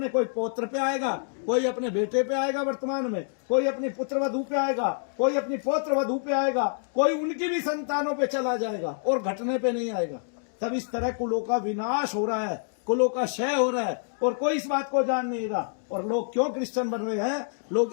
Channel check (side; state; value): right; silent; digital silence